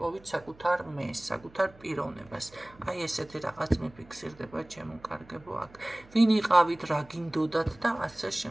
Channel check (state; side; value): noise; right; hum, 25 dB below the sound